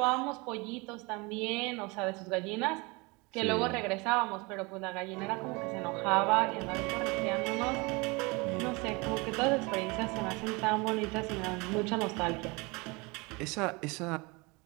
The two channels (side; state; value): left; quieter; 26.7 dB